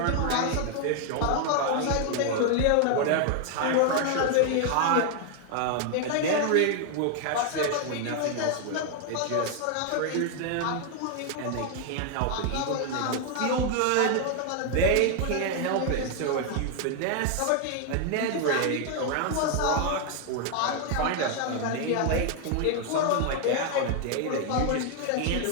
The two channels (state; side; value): different; both; correlation 0.00